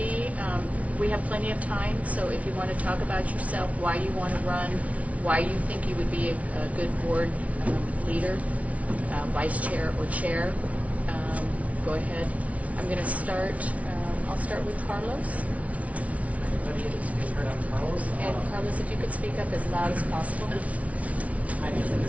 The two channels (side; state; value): left; late; 0.066 ms